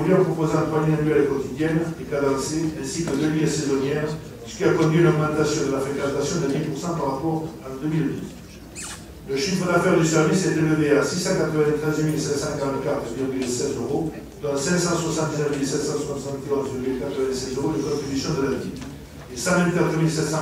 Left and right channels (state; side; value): identical; both; correlation 1.00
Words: en proposant 3 lignes annuelles quotidiennes et cadencées, ainsi que 2 lignes saisonnières, ce qui a conduit à une augmentation de la fréquentation de 10% par rapport à 2012. Le chiffre d'affaires du service est élevé à 693 544,16 euros, dont 579 771,96 euros de contribution de la ville et 124